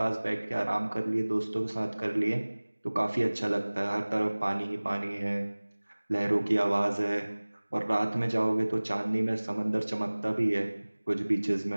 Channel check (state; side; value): inverted; both; correlation -1.00